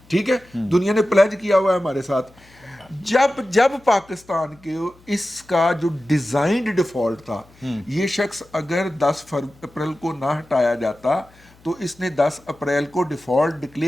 ٹھیک ہے, دنیا نے پلیج کیا ہوا ہے ہمارے ساتھ. جب پاکستان کے اس کا جو ڈیزائنڈ ڈیفالٹ تھا, یہ شخص اگر 10 اپریل کو نہ ہٹایا جاتا تو اس نے 10 اپریل کو ڈیفالٹ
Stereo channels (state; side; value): noise; left; hum, 28 dB below the sound